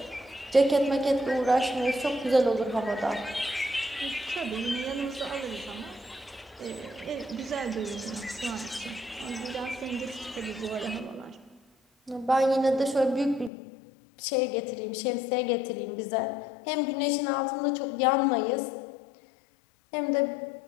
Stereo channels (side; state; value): right; drops out; at 13.5 s